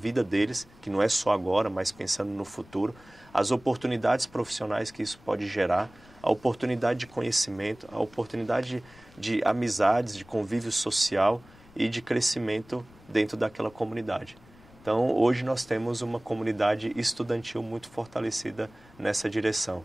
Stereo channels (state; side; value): noise; left; rumble, 25 dB below the sound